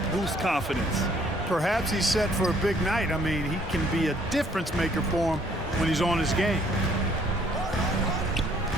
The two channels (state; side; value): normal; both; correlation 0.62